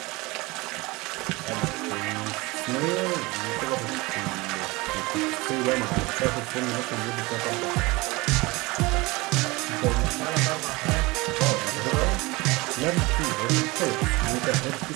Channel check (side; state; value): left; quieter; 23.2 dB